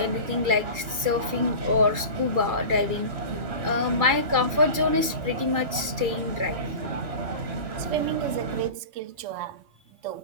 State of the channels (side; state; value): left; late; 2.3 ms